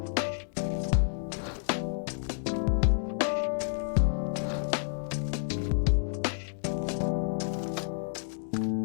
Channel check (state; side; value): silent; right; digital silence